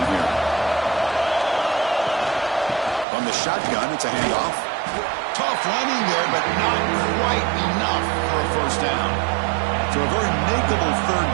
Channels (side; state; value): left; drops out; at 3.1 s